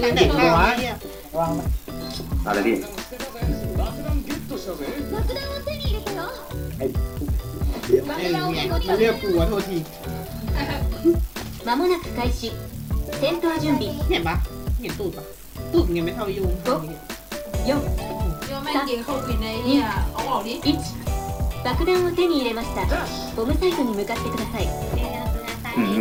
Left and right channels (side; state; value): both; identical; correlation 1.00